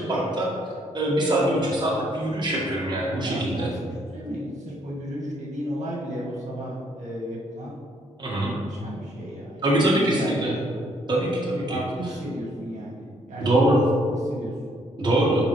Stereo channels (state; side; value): normal; both; correlation 0.67